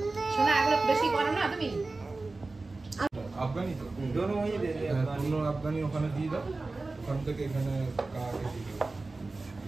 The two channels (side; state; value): left; quieter; 3.4 dB